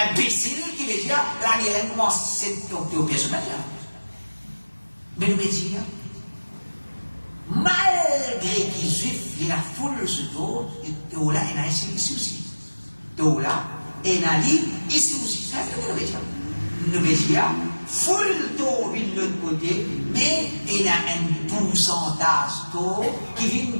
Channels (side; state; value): both; inverted; correlation -1.00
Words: imbécile qui veut dire la guerre commence cette coupe de personnage. Mais nous dire, malgré qu'ils juifs, il y a la foule ce dos, et là, il y a ici aussi. Donc là, il y a ici aussi. C'est ce que nous veut dire. Nous veut dire, full taux vient de l'autre côté, mais il y a un pourcentage taux qui vient